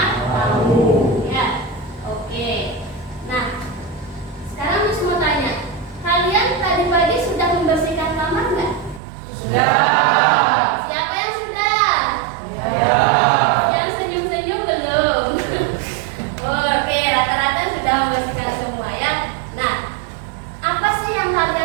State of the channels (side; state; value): left; drops out; at 9.0 s